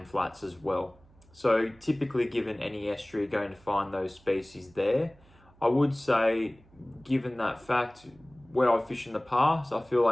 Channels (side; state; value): right; noise; hum, 28 dB below the sound